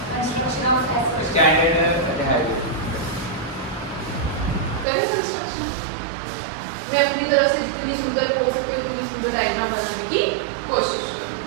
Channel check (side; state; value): left; drops out; at 4.9 s